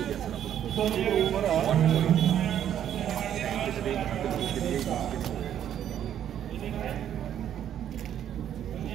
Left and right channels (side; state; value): left; quieter; 10.2 dB